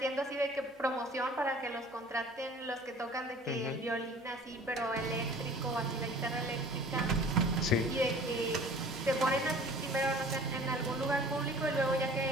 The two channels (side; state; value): both; normal; correlation 0.48